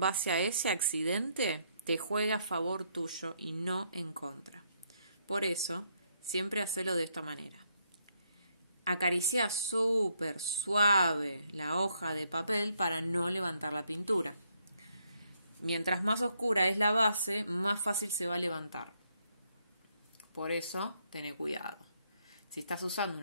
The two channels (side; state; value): both; inverted; correlation -0.74